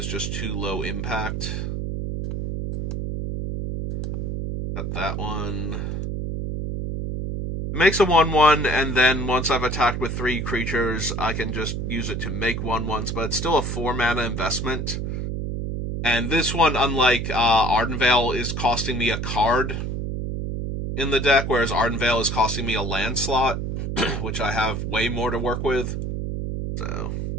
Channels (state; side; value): noise; right; hum, 3 dB below the sound